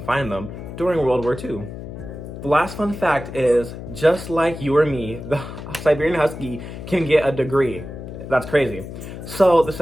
find them during World War II. The last fun fact is, just like you or me, the Siberian Husky can get a degree. That's crazy. So the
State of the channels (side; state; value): left; noise; hum, 10 dB below the sound